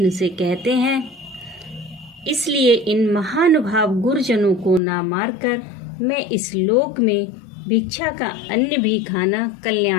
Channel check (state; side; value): drops out; right; at 4.8 s